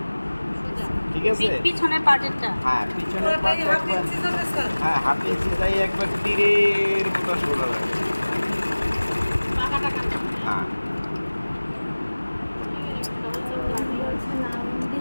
ঠিক আছে? পিছনের পার্টেরটা হ্যাঁ পিছনের পাশে একবার, হ্যাঁ হাফ ইঞ্চি যাই একবার তীরের মতো সোজা লাগে। পাকাটা কাটা হ্যাঁ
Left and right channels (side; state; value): both; inverted; correlation -1.00